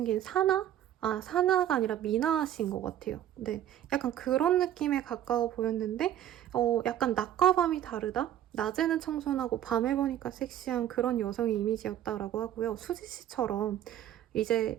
사나? 사나가 아니라 미나 씨인 것 같아요. 네, 약간 그런 느낌에 가까워 보였는데 약간 낮과 밤이 다르다? 낮에는 청순하고 밤에 보니까 섹시한 그런 여성의 이미지였다라고 하고요. 수지 씨처럼 이제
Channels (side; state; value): left; quieter; 11.5 dB